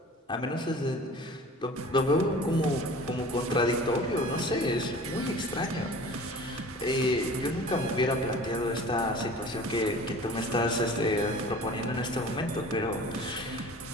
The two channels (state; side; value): normal; both; correlation 0.43